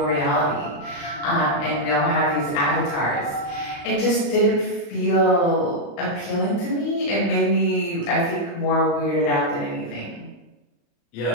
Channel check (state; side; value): late; right; 35 ms